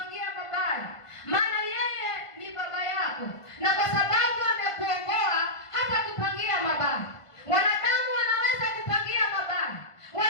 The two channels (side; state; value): right; late; 1.5 ms